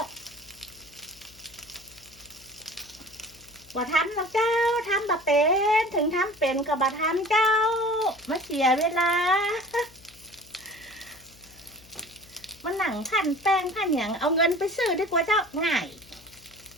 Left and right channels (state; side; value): noise; left; hum, 25 dB below the sound